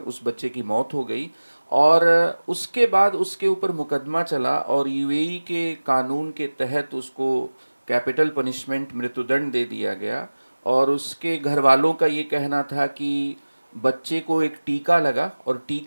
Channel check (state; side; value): inverted; both; correlation -1.00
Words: बच्चे की मौत हो गई। और उसके बाद उसके ऊपर मुकदमा चला, और यूएई के कानून के तहत उसको कैपिटल पनिशमेंट, मृत्युदंड दे दिया गया। और उसके घर वालों का ये कहना था कि बच्चे को एक टीका लगा, और